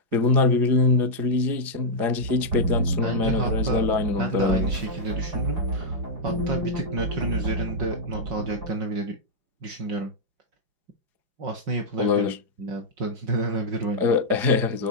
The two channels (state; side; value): late; left; 4.9 ms